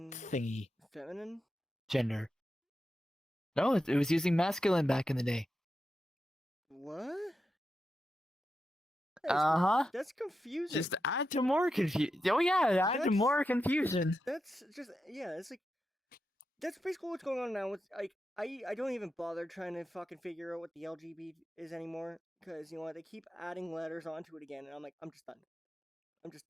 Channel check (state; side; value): normal; both; correlation 0.88